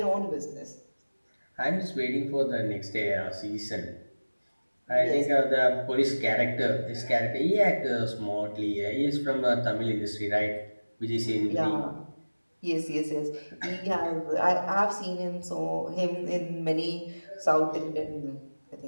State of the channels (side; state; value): both; inverted; correlation -1.00